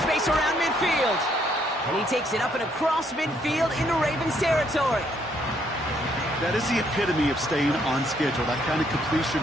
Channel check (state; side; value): normal; both; correlation 0.70